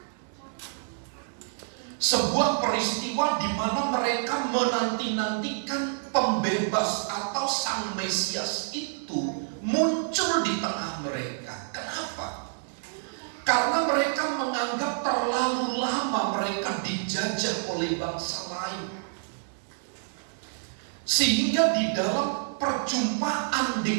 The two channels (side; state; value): left; silent; digital silence